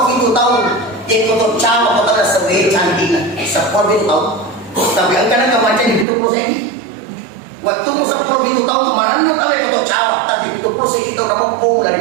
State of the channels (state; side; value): drops out; left; at 6.1 s